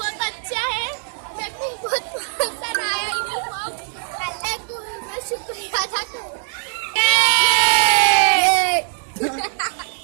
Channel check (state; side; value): silent; left; digital silence